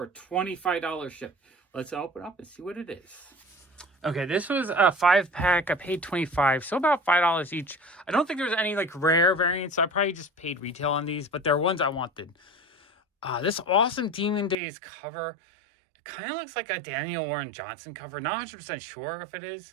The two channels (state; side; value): drops out; left; at 14.6 s